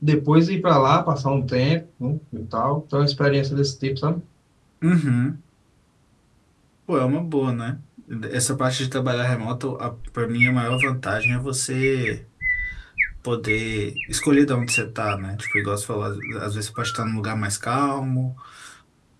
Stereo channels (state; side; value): identical; both; correlation 1.00